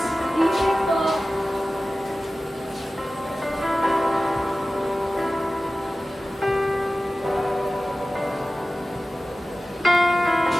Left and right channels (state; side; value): normal; both; correlation 0.96